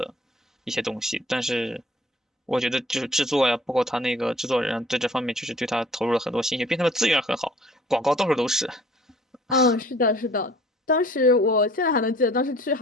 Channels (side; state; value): both; normal; correlation 0.52